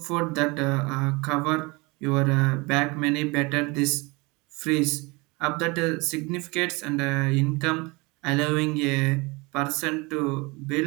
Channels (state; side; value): quieter; left; 26.1 dB